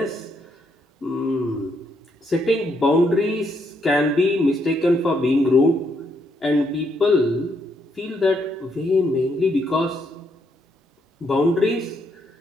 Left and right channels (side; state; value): both; normal; correlation 0.75